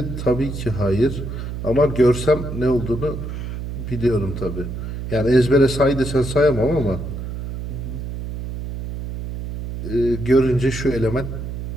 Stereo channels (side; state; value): right; noise; hum, 6 dB below the sound